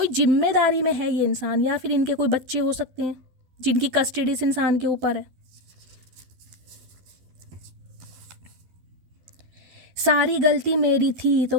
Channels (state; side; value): late; left; 12 ms